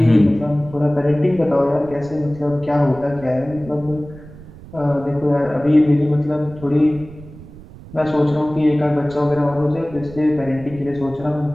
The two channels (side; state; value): right; noise; rumble, 18 dB below the sound